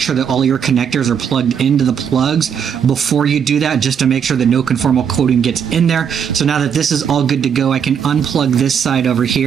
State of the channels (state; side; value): quieter; left; 7.7 dB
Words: that all your connectors are plugged into the plugs before you do that, just to make sure that no conformal coating gets in there. So now that this is all good to go, I can unplug this side over